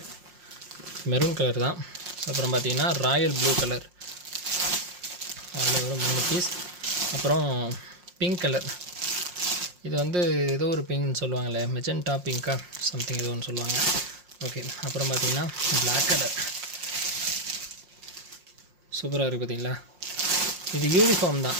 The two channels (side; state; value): left; late; 5.6 ms